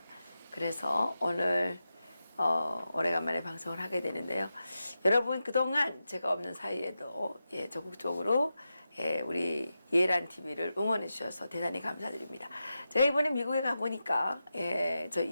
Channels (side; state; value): both; inverted; correlation -0.91